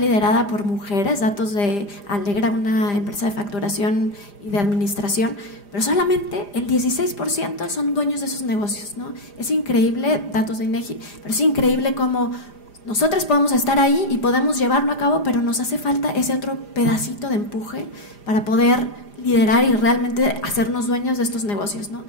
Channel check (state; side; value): late; right; 4.9 ms